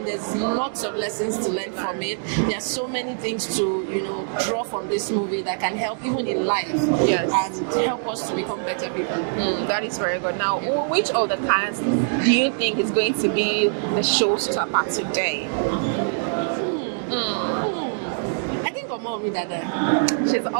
there's lots of lessons to learn from it. There are so many things to, draw from this movie that can help even in life and help us to become better people. That is very good. Now, which of the cast do you think is going to be the showstopper today? I think Omowumi Dada. She's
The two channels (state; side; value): silent; left; digital silence